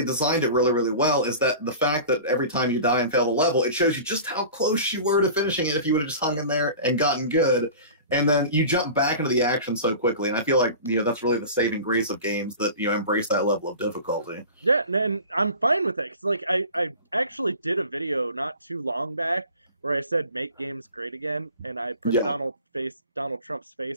designed it really, really well, is that the fact that every time you die and fail the level, it shows you just how close you were to finishing it if you would have just hung in there and gotten good. And then you jump back into the action so quickly, and I feel like that's really the saving grace of games that embrace that level of difficulty. Yeah, and I'm fine with it because like I actually did a video not too long back where I said make games great again, and I put Donald Trump's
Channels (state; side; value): inverted; both; correlation -0.39